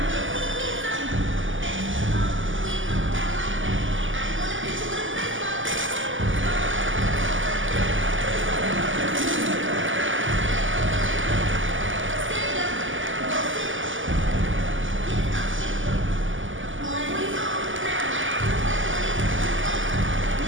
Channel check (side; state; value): left; late; 0.57 ms